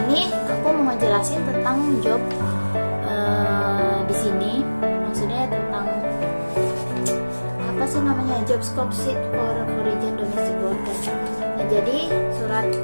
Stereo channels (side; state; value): both; inverted; correlation -1.00